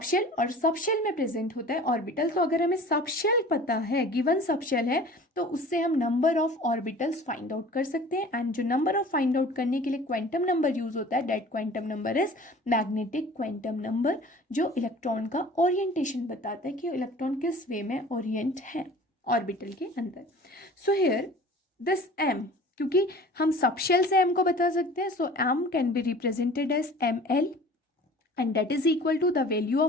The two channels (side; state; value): both; normal; correlation 0.44